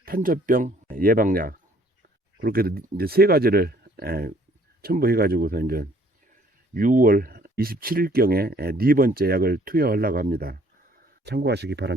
탄저병 예방약, 그렇게 이제 세 가지를 첨부해가지고서 이제 6월 27일경에 네 번째 약을 투여하려고 합니다. 참고하시기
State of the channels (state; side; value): normal; both; correlation 0.60